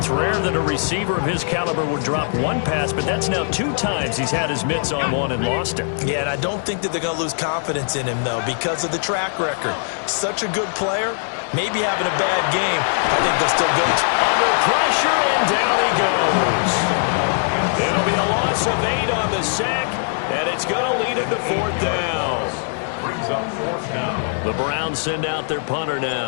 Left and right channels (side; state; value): right; silent; digital silence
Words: rare that a receiver of his caliber would drop one pass, but that's now 2 times he's had his mitts on one and lost it. Yeah, and I don't think that they're going to lose confidence in him, though, because of the track record. Such a good player, maybe having a bad game. I think they'll still go under pressure, and down he goes. It'll be a loss of 8 on the sack, and it's going to lead him to 4th down. Brings up 4th down. The Browns send out their punter